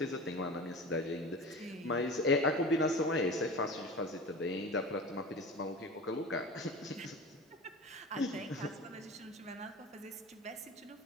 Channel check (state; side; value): normal; both; correlation 0.34